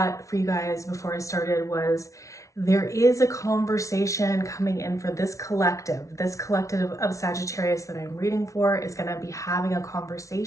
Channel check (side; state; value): right; late; 0.15 ms